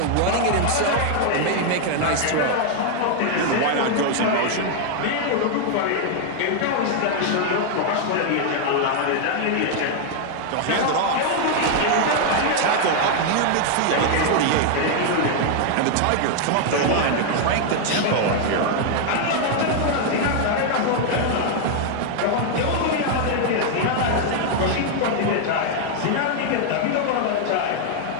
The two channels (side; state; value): both; different; correlation 0.00